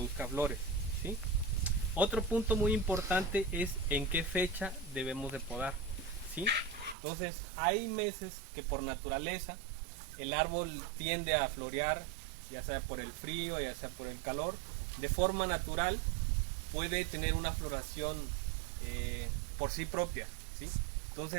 flores, ¿sí? Otro punto muy importante es en qué fecha debemos de podar, ¿sí? Entonces, hay meses que por naturaleza el árbol tiende a florear, ya sea por el frío, ya sea por el calor, de forma natural puede tener una floración por sí propia, ¿sí?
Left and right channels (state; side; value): drops out; left; at 7.0 s